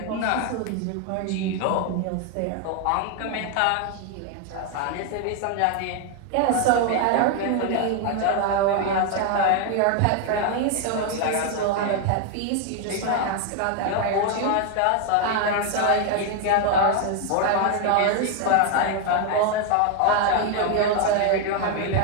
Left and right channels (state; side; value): different; both; correlation 0.01